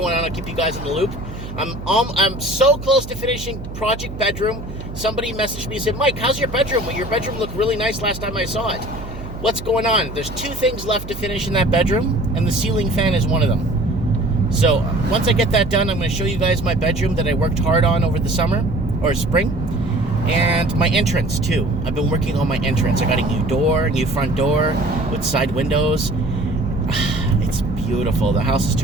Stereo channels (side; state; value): right; noise; hum, 11 dB below the sound